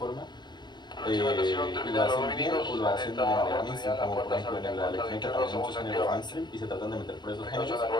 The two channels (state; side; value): late; right; 0.21 ms